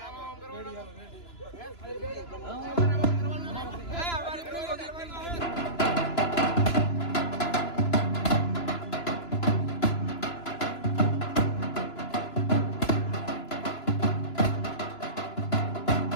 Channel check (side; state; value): right; late; 2.9 ms